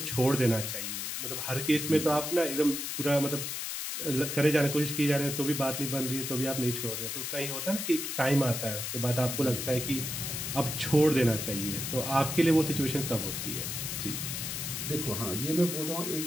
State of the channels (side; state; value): left; noise; hiss, 4 dB below the sound